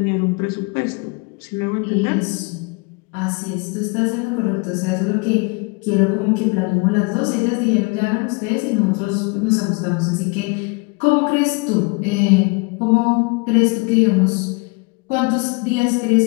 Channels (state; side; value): quieter; right; 29.7 dB